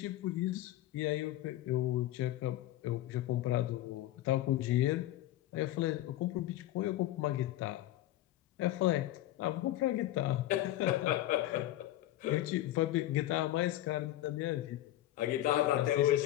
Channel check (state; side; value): quieter; right; 14.5 dB